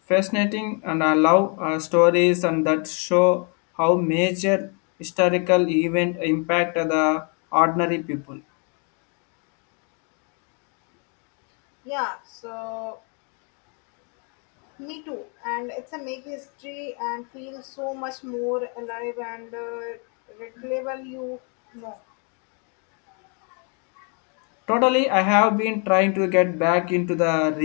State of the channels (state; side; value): quieter; right; 37.6 dB